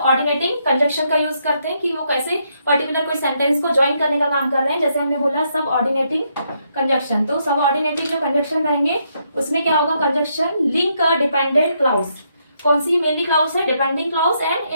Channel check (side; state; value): both; inverted; correlation -0.76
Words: ऑर्डिनेटिंग कंजक्शन का यूज करते हैं कि वो कैसे पर्टिकुलर कोई सेंटेंस को ज्वाइन करने का काम कर रहे हैं। जैसे हमने बोला सब ऑर्डिनेटिंग कंजक्शन, तो सब ऑर्डिनेटिंग जो कंजक्शन रहेंगे उसमें क्या होगा, conjunction link a dependent clause. कौन सी मेनली क्लाउज है, depending clause